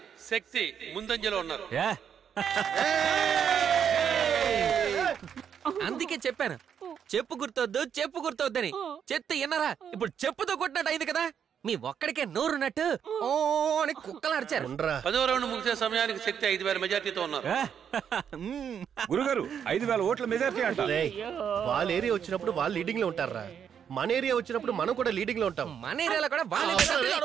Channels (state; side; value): quieter; left; 8.1 dB